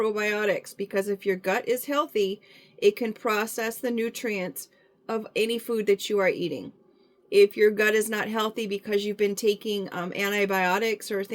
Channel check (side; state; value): both; identical; correlation 1.00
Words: because if your gut is healthy, it can process the nutrients of any food that you are eating. If your gut is not healthy because you've been taking antibiotics or